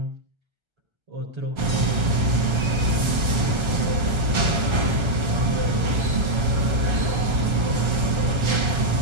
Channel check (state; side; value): late; left; 1.3 ms